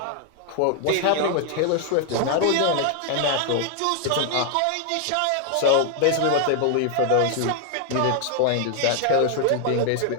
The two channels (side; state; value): both; different; correlation 0.00